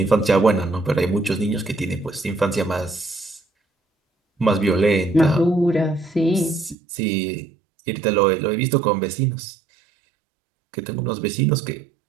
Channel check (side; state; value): left; drops out; at 6.8 s